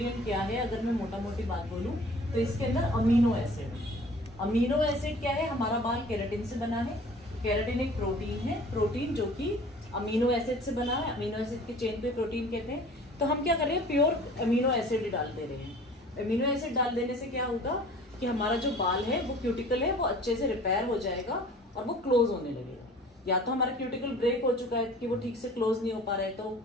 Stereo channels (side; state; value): both; normal; correlation 0.47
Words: क्या है, अगर मैं मोटा मोटी बात बोलूं तो इसके अंदर अमीनो एसिड। अमीनो एसिड क्या है, हमारा बाल केराटिन से बना है, केराटिन एक प्रोटीन है, प्रोटीन जो कि अमीनो एसिड से बना है, अमीनो एसिड की चेन पे प्रोटीन कहते हैं। तो हम क्या कर रहे हैं, प्योर अमीनो एसिड डाल दे रहे हैं। अमीनो एसिड डाल देने से क्या होगा कि हमारा जो बाल है वो क्यूटिकल है वो अच्छे से रिपेयर हो जाएगा और वो क्लोज होने लगेगा। या तो हमारा क्यूटिकल ब्रेक हो चुका है कि वो ठीक से क्लोज नहीं हो पा रहा है तो वो